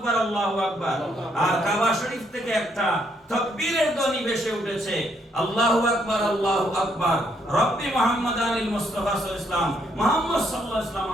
আল্লাহু আকবার, আর কাবা শরীফ থেকে একটা তাকবীরের ধ্বনি ভেসে উঠেছে, আল্লাহু আকবার আল্লাহু আকবার। রব্বি মুহাম্মাদানিল মুস্তাফা সাল্লাল্লাহু আলাইহি ওয়াসাল্লাম, মুহাম্মদ সাল্লাল্লাহু আলাইহি ওয়াসাল্লাম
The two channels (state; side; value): normal; both; correlation 0.72